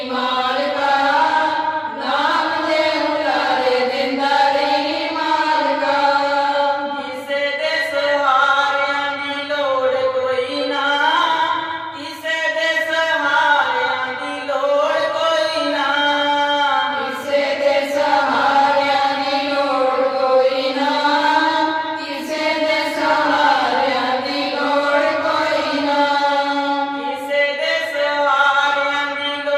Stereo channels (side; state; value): both; identical; correlation 1.00